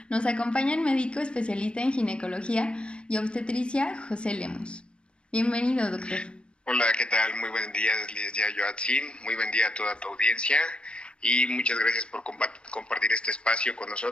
nos acompaña el médico especialista en ginecología y obstetricia José Lemus. Bienvenido, doctor. Hola, ¿qué tal? Muy buen día, licenciada Joatzin. Muy buen día a toda tu audiencia y muchas gracias por compartir este espacio con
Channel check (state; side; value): late; right; 0.056 ms